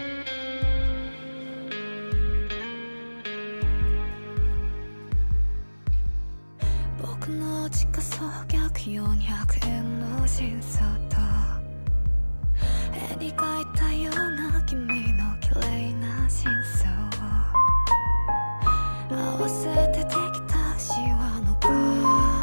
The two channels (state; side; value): inverted; both; correlation -1.00